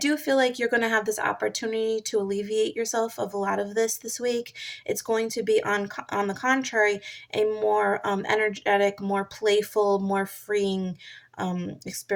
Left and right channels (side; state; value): both; identical; correlation 1.00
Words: feel like you're going to have this opportunity to alleviate yourself of a lot of this week. It's going to be on the contrary a more energetic, more playful, more freeing